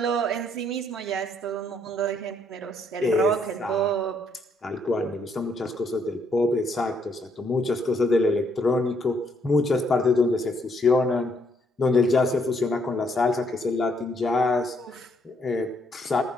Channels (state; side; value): normal; both; correlation 0.71